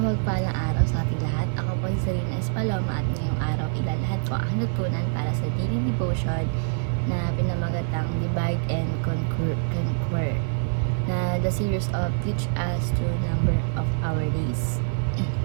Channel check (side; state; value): left; silent; 57 dB below the other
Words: mapagpalang araw sa ating lahat. Ako po si Serena Espaloma at ngayong araw ilalahad ko ang natutunan para sa daily devotion na pinamagatang Divide and Conquer na the series of Teach Us to Number of Our Days.